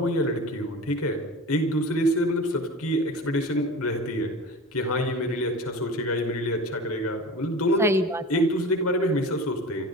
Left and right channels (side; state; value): both; normal; correlation 0.34